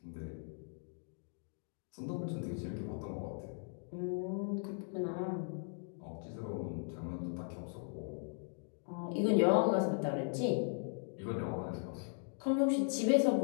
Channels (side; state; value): right; silent; 52 dB below the other